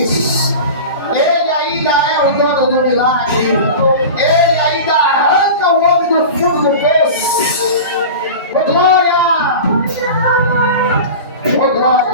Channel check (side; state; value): both; inverted; correlation -0.31